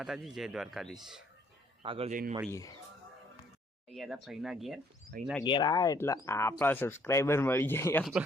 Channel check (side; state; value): both; normal; correlation 0.64